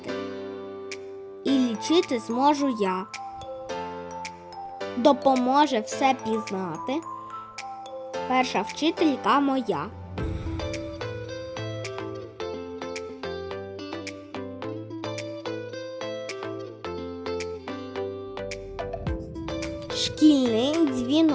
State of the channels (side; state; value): both; identical; correlation 1.00